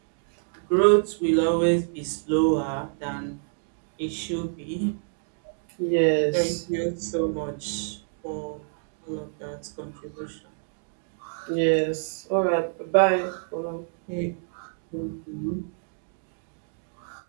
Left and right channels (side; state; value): left; silent; digital silence